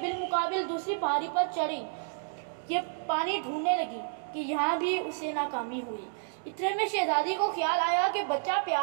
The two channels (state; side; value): silent; left; digital silence